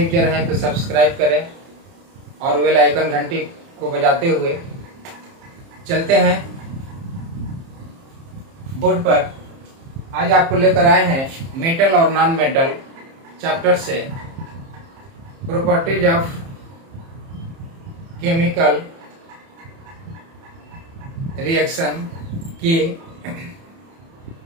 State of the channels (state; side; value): late; left; 30 ms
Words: हैं तो सब्सक्राइब करें और बेल आइकन घंटी को बजाते हुए चलते हैं बोर्ड पर। आज आपको लेकर आए हैं मेटल और नॉन मेटल चैप्टर से प्रॉपर्टीज ऑफ केमिकल रिएक्शन के